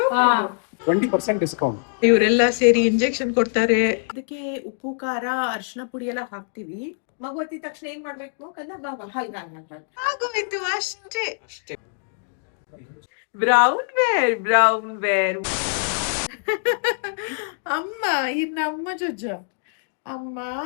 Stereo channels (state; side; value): silent; right; digital silence